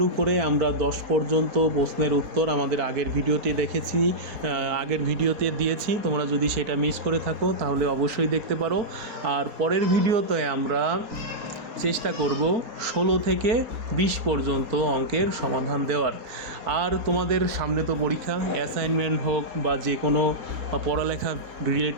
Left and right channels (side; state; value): left; late; 4.2 ms